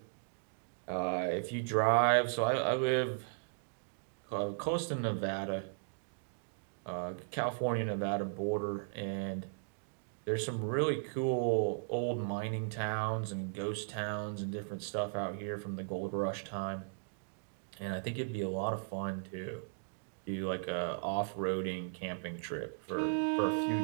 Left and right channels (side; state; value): left; silent; digital silence